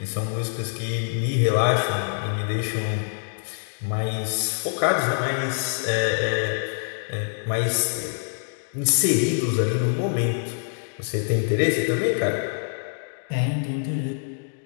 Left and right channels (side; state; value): right; silent; digital silence